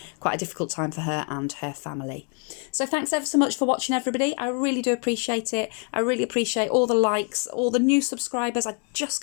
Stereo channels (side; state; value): right; quieter; 39.0 dB